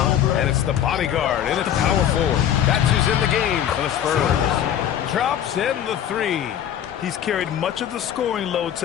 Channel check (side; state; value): right; quieter; 10.2 dB